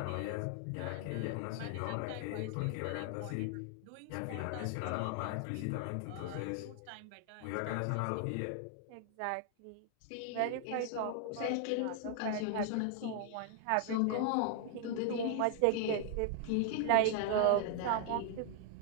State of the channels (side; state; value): both; different; correlation 0.00